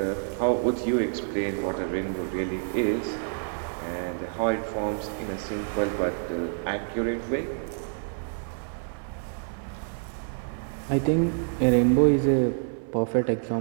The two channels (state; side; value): silent; left; 56 dB below the other